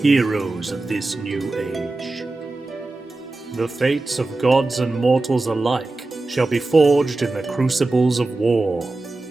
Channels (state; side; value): quieter; left; 3.1 dB